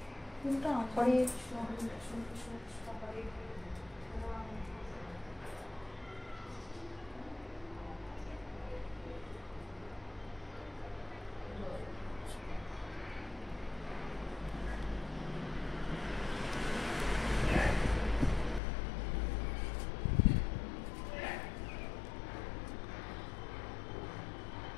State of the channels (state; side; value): drops out; right; at 18.6 s